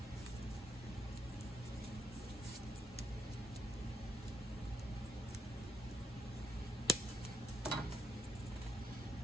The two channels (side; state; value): both; normal; correlation 0.75